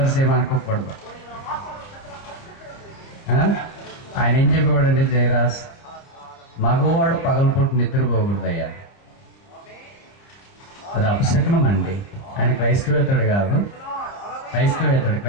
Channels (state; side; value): late; right; 30 ms